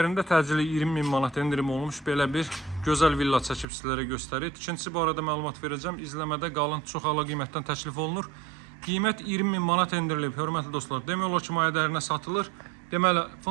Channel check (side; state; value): left; drops out; at 3.7 s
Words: təcili 20.000 manat endirim olmuş belə bir gözəl villa çəkib sizlərə göstərir. Tikinti barədə məlumat verəcəm. İzləmədə qalın, çox əla qiymətdən təklif olunur. Qiymət 20.000 manat endirilib, hörmətli dostlar. Demək olar ki, maya dəyərinə satılır. Deməli,